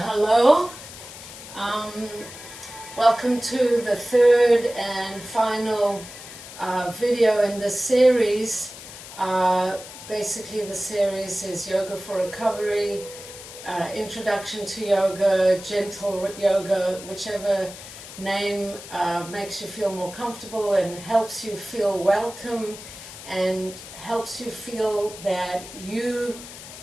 Welcome to the third and final video in this series. Basically the series is Yoga for Recovery, Introduction to Yoga, Gentle Yoga, whichever name makes you feel more comfortable and helps you feel welcome and helps you feel that you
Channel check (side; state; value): left; noise; hiss, 14 dB below the sound